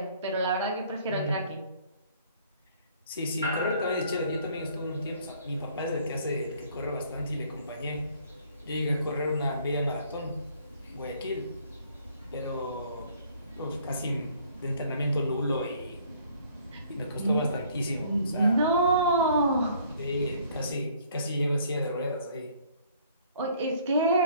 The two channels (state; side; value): inverted; both; correlation -0.59